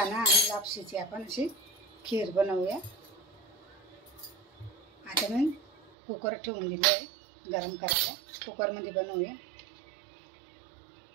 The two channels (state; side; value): drops out; left; at 5.9 s